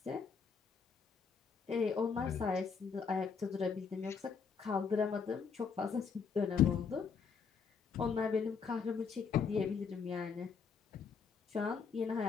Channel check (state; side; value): quieter; right; 5.8 dB